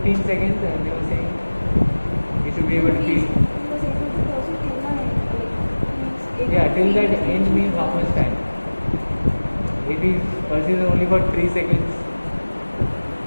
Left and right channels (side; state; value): both; inverted; correlation -1.00